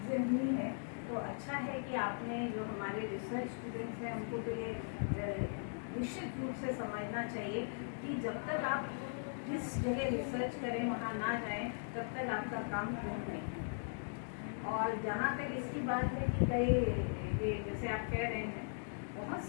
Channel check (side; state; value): right; silent; digital silence